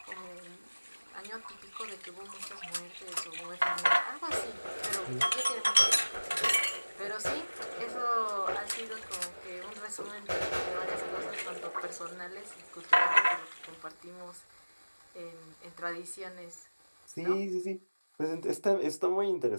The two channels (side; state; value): both; inverted; correlation -1.00